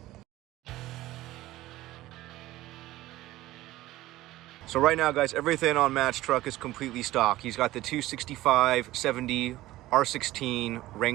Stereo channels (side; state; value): left; quieter; 16.5 dB